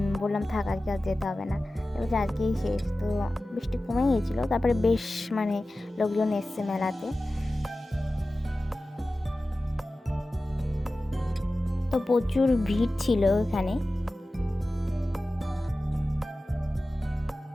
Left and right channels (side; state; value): both; normal; correlation 0.95